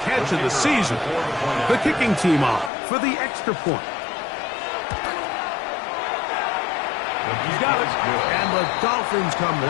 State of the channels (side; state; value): right; drops out; at 2.7 s